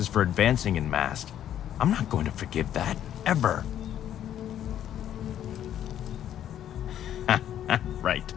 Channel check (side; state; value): right; quieter; 10.8 dB